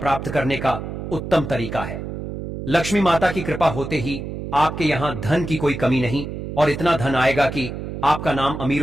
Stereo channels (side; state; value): right; noise; hum, 7 dB below the sound